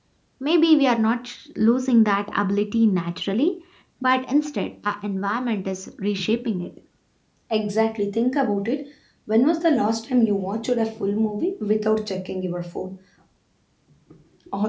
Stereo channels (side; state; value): both; identical; correlation 1.00